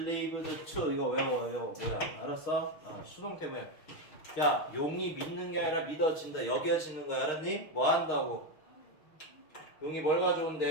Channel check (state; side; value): late; right; 6.2 ms